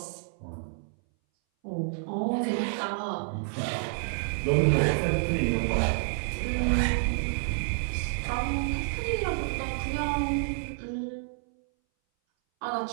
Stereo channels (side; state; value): left; silent; 59 dB below the other